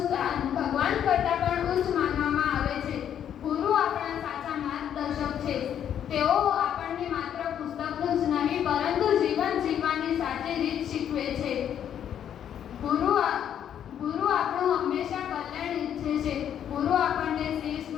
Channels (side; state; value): right; quieter; 9.5 dB